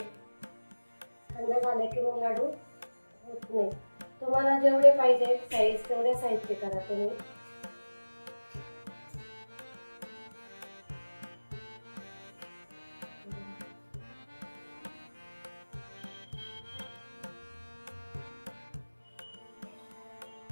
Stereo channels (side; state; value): both; inverted; correlation -1.00